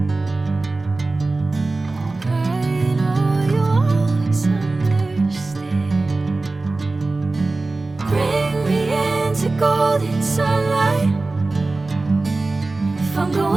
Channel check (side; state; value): left; quieter; 3.3 dB